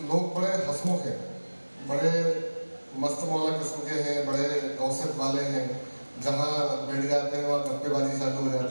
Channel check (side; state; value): both; inverted; correlation -1.00